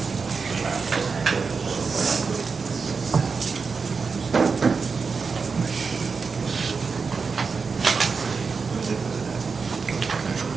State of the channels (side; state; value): left; quieter; 5.0 dB